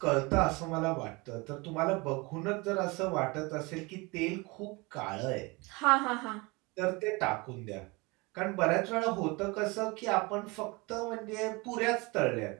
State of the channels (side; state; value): left; quieter; 25.9 dB